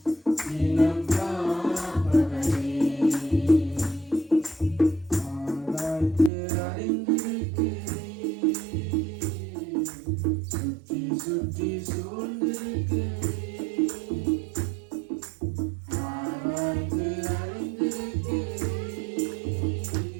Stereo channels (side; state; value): left; drops out; at 6.3 s